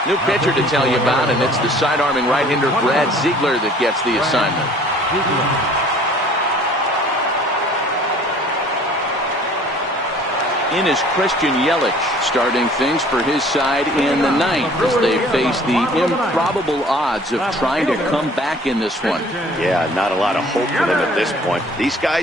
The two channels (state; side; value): normal; both; correlation 0.52